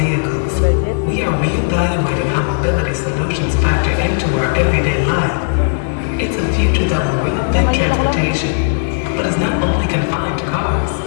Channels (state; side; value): silent; right; digital silence